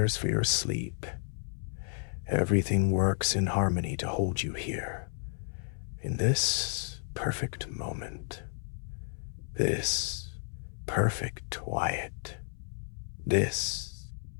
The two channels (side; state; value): right; silent; 56 dB below the other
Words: for your sleep. Everything works in harmony to hold you here, in this perfect moment, this perfect quiet,